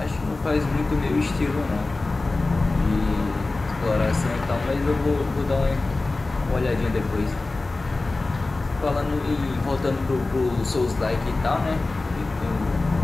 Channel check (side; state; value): right; quieter; 3.3 dB